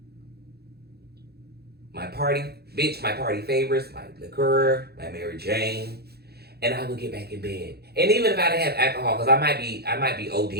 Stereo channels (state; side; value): late; left; 0.46 ms